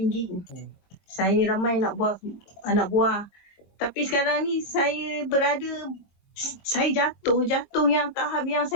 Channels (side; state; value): right; late; 22 ms